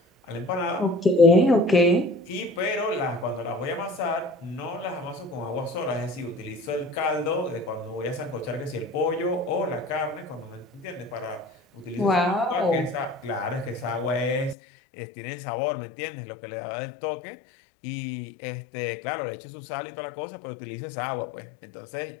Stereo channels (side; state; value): right; drops out; at 14.6 s